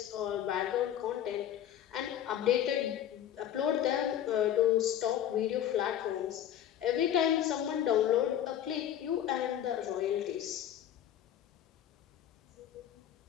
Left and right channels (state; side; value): quieter; right; 10.7 dB